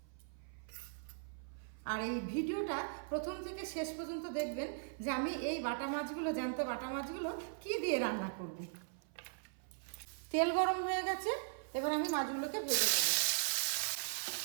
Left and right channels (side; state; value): left; silent; 52 dB below the other